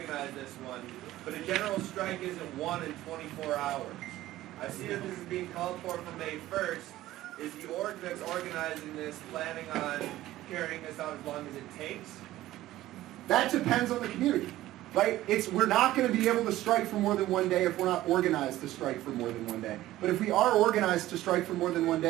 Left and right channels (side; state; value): left; quieter; 15.3 dB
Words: this one, but a general strike isn't one in 24 hours. I see that this is being called for May 1st. Is the org that's organizing this planning on carrying this out as long as it takes? That depends on the community, right? We're not going to be able to strike for more than one day if we're not organized to strike for more than one day. But if we are organized to strike for more than one